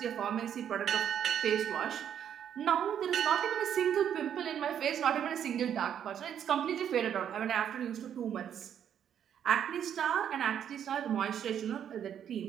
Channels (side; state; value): left; quieter; 9.2 dB